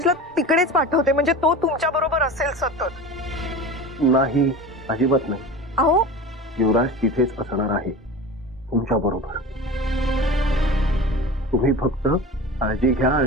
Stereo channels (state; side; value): normal; both; correlation 0.33